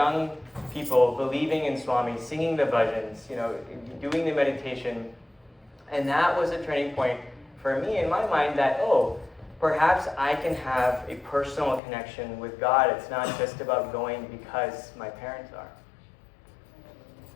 people believing in Swami, singing the bhajans, doing the meditation. And that was a turning point for me in my mind that, perhaps I can have a personal connection with God. It's not just about going because my parents are.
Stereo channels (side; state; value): right; drops out; at 11.8 s